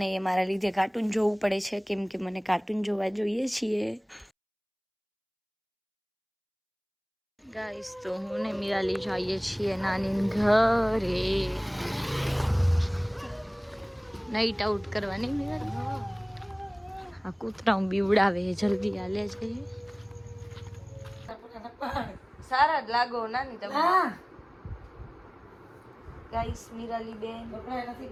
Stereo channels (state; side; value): identical; both; correlation 1.00